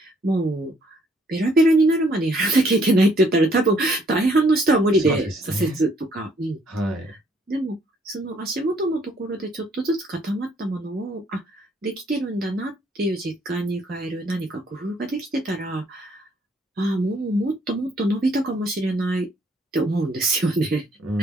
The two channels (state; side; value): normal; both; correlation 0.66